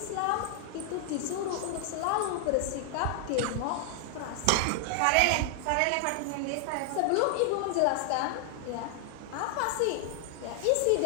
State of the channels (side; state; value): both; different; correlation 0.00